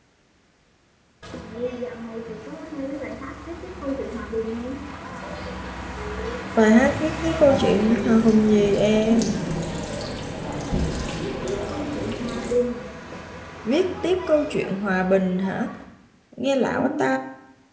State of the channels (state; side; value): identical; both; correlation 1.00